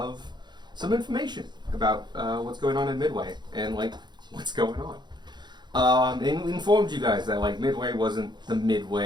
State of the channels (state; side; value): late; left; 0.21 ms